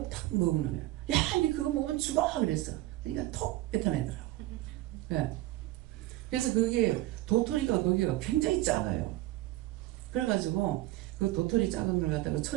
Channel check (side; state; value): left; quieter; 16.9 dB